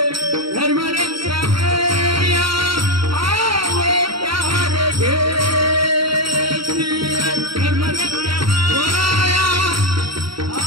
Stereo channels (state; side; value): late; left; 0.74 ms